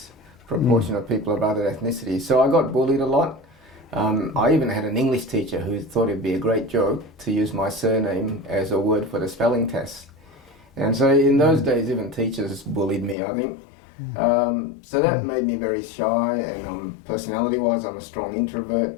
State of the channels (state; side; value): drops out; right; at 13.2 s